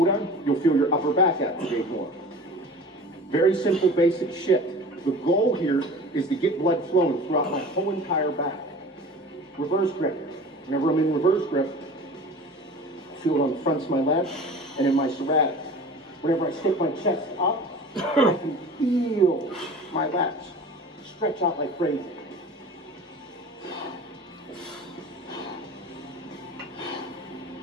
on, you'll feel your upper back activate more. Very simple, basic shit. The goal here is to get blood flowing throughout my whole entire back. Reverse grip. Whenever I'm in reverse grip, I feel it on the fronts of my lats and in my serratics. Whenever I stick my chest up, I can feel my lats stretch out like crazy.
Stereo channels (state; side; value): normal; both; correlation 0.40